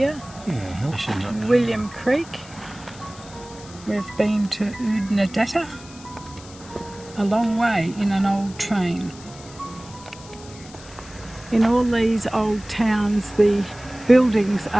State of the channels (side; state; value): left; noise; hiss, 19 dB below the sound